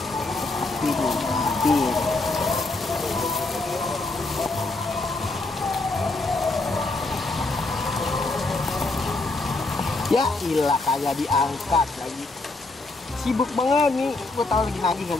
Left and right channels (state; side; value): quieter; right; 3.2 dB